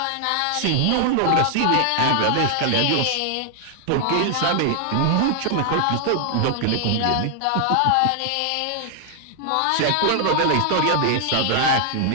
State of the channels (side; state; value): both; different; correlation 0.00